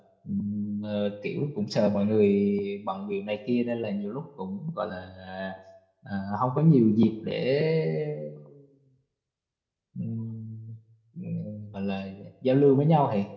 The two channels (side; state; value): both; identical; correlation 1.00